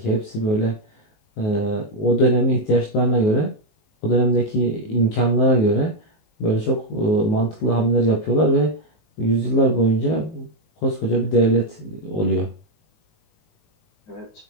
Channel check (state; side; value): late; right; 19 ms